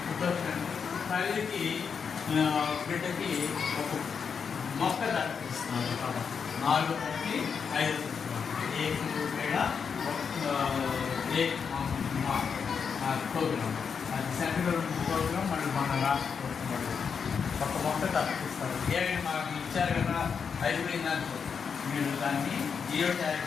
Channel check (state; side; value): quieter; right; 6.3 dB